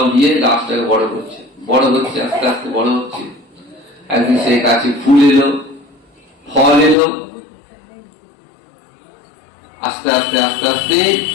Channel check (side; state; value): right; drops out; at 7.0 s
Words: দিয়ে গাছটাকে বড় করছে, বড় হচ্ছে, আস্তে আস্তে বড় হচ্ছে। একদিন সেই গাছে ফুল এলো, ফল এলো, আস্তে আস্তে আস্তে আস্তে